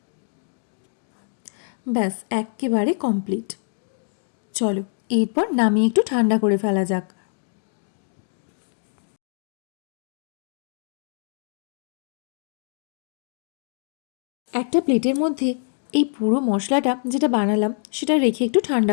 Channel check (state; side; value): silent; right; digital silence